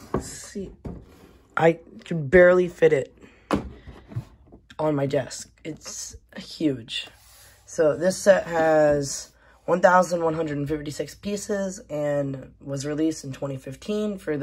let's see. I could barely fit it on my desk. It's huge. So this set has 1,156 pieces and was released in 2015 for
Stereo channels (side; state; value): both; identical; correlation 1.00